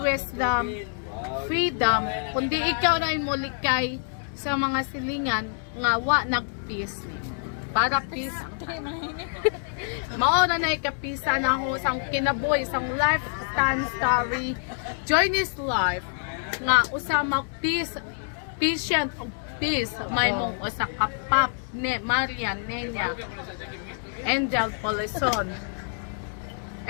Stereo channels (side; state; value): right; silent; digital silence